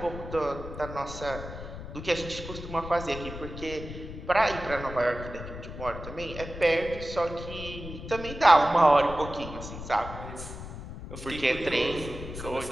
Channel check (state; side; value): noise; left; rumble, 10 dB below the sound